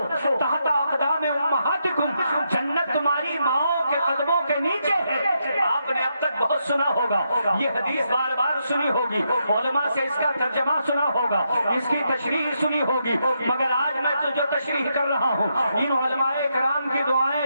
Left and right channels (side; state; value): both; inverted; correlation -0.81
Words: تحت اقدام امہاتکم، جنت تمہاری ماؤں کے قدموں کے نیچے ہے۔ آپ نے اب تک بہت سنا ہوگا، یہ حدیث بار بار سنی ہوگی، علماء سے اس کا ترجمہ سنا ہوگا، اس کی تشریح سنی ہوگی، مگر آج میں تو جو تشریح کر رہا ہوں ان علماء کرام کی